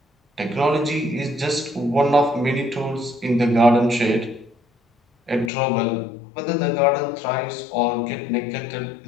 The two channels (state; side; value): drops out; right; at 5.5 s